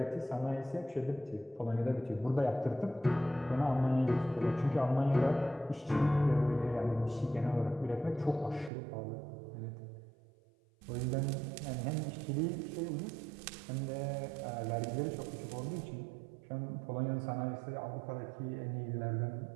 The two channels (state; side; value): drops out; left; at 8.7 s